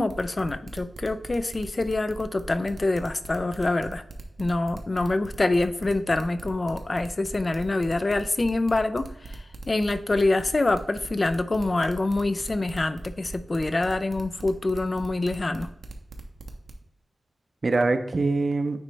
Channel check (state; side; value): normal; both; correlation 0.97